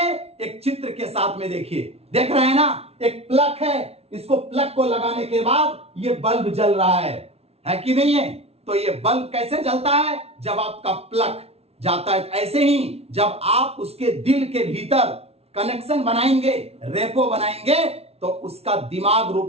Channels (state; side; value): late; left; 0.30 ms